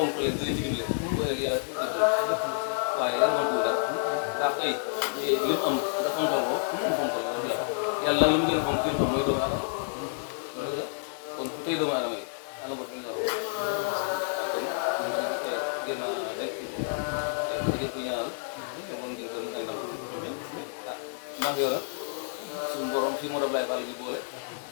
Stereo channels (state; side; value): silent; right; 58 dB below the other